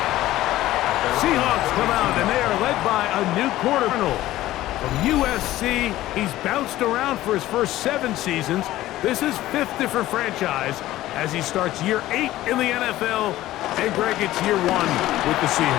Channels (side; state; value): right; quieter; 15.4 dB